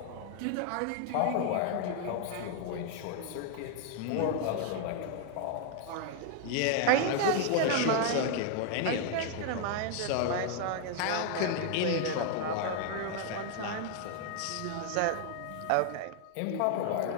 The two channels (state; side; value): different; both; correlation 0.00